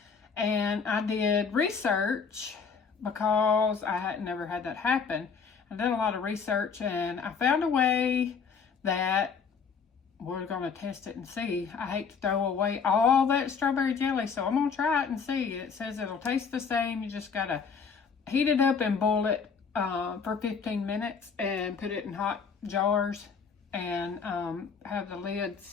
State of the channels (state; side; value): quieter; right; 5.9 dB